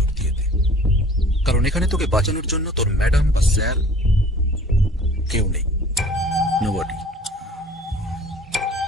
দিয়ে দে, কারণ এখানে তোকে বাঁচানোর জন্য তোর ম্যাডাম বা স্যার কেউ নেই। নোবডি।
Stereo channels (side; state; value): both; normal; correlation 0.49